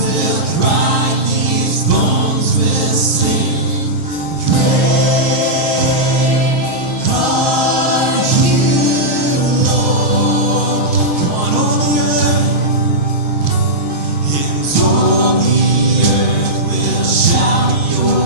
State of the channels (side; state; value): right; late; 6.4 ms